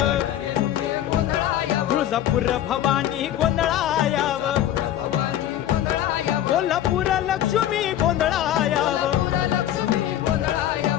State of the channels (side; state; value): right; quieter; 11.9 dB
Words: तुळजापूर भवानी गोंधळायाव. कोल्हापूर लक्ष्मी गोंधळायाव